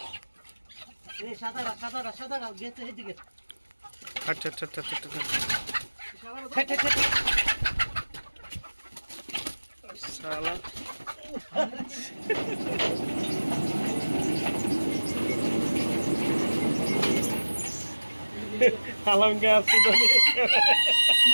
আচ্ছা আচ্ছা আচ্ছা আচ্ছা শালা আলমকে আসছি তো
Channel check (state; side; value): inverted; both; correlation -1.00